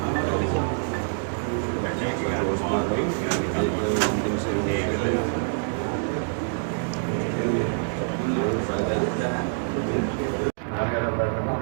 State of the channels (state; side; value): silent; left; digital silence